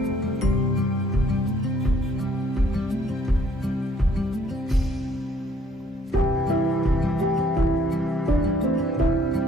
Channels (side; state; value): both; normal; correlation 0.63